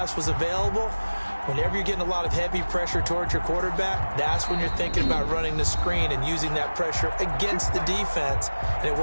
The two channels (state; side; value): inverted; both; correlation -1.00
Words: was available. Whenever you're getting a lot of heavy pressure towards your quarterback, that's when you're thinking about running the screen and using that pressure against the defense. And it